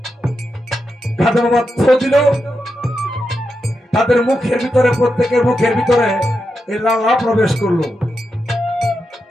খাতা বাবা থো দিল তাদের মুখের ভিতরে প্রত্যেকের মুখের ভিতরে এই লালা প্রবেশ করলো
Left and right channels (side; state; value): both; normal; correlation 0.87